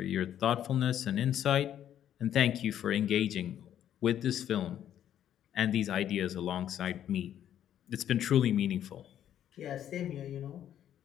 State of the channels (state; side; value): quieter; right; 10.6 dB